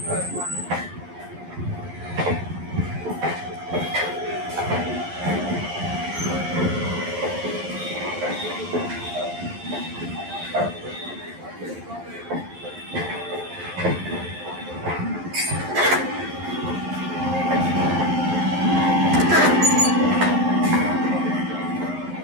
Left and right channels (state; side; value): late; left; 11 ms